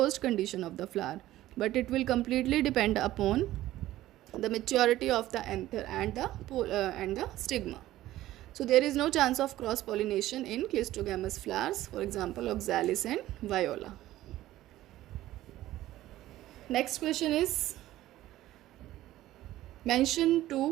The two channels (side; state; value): left; quieter; 15.0 dB